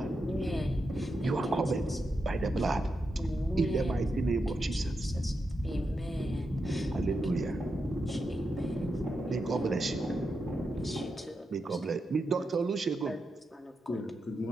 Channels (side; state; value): both; normal; correlation 0.87